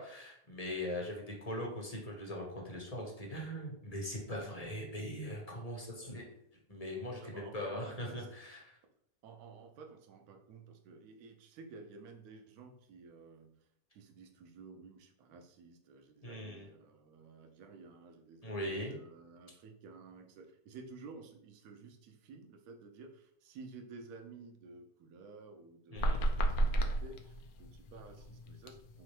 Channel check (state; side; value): late; right; 1.7 ms